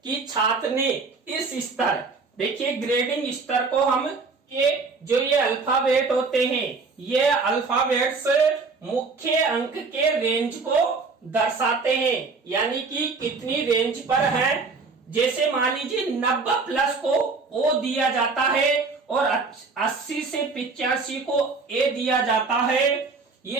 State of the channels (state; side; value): quieter; left; 4.3 dB